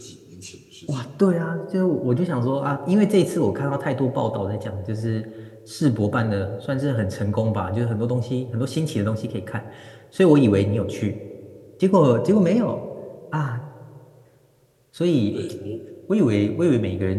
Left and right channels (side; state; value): both; identical; correlation 1.00